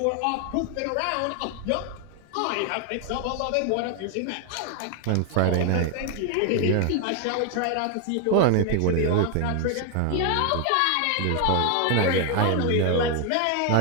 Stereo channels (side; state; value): both; different; correlation 0.01